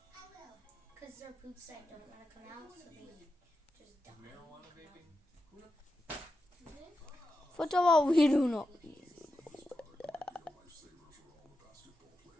I will. Because they're poops that don't want to come out, so they just die. Marijuana vaping? First of all, we do not.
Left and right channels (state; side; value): normal; both; correlation 0.89